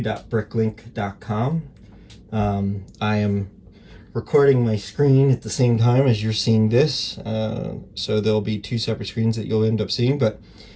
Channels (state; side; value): identical; both; correlation 1.00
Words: I am recording my screen at the same time as you're seeing this, so there'll be two separate screens that you'll end up seeing. But